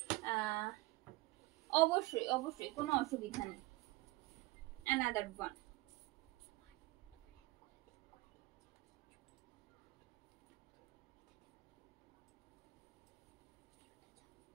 অবশ্যই অবশ্যই কোনো অসুবিধা নেই। Another one.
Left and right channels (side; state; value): left; quieter; 20.4 dB